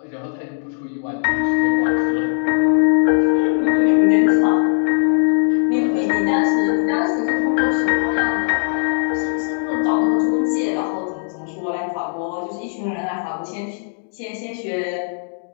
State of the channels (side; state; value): right; silent; digital silence